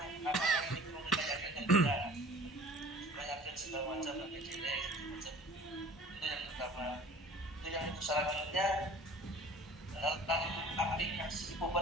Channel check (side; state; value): both; normal; correlation 0.46